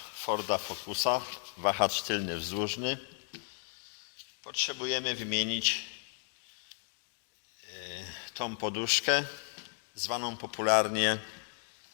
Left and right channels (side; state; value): right; silent; 55 dB below the other